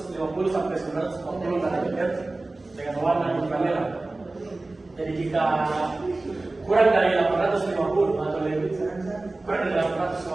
sampai 940 nanometer dengan warna ultraviolet. Jadi jika kurang dari 850 atau lebih kurang dari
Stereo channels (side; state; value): left; quieter; 3.1 dB